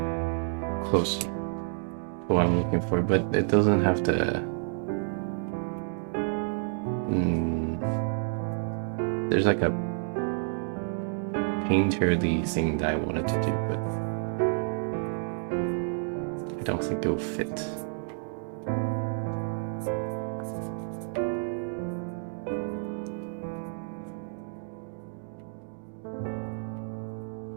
close to what I'm looking for, but it doesn't have the. Mm, there's like a painterly thing that I wanted to do, but I don't think it will fit.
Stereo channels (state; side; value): silent; left; 58 dB below the other